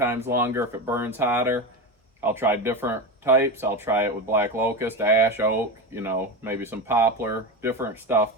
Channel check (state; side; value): normal; both; correlation 0.20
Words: longer, if it burns hotter. I'll try different types. I'll try it with black locust, ash, oak, maybe some poplar, different stuff,